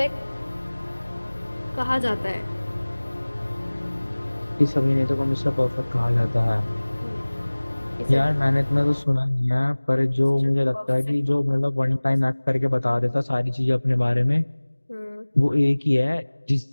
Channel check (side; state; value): both; inverted; correlation -1.00